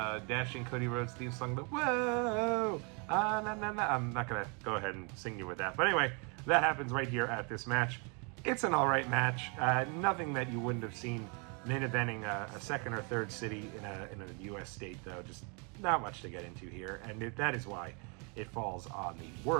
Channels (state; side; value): quieter; left; 34.4 dB